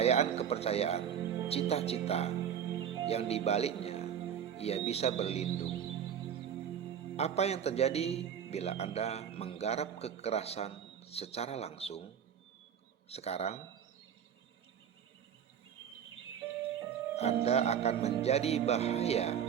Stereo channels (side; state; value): left; quieter; 8.6 dB